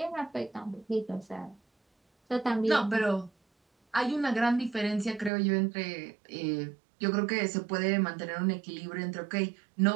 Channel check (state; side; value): drops out; left; at 5.3 s